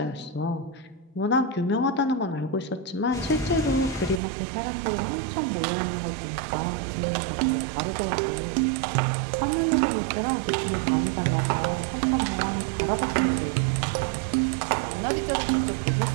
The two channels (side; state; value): left; drops out; at 4.2 s